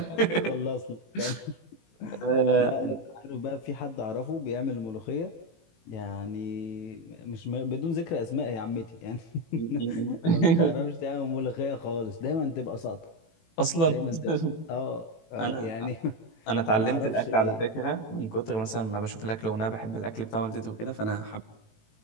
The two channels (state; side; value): late; right; 18 ms